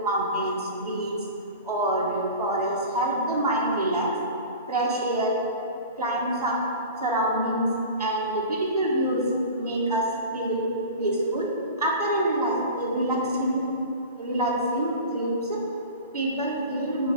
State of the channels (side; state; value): both; inverted; correlation -0.35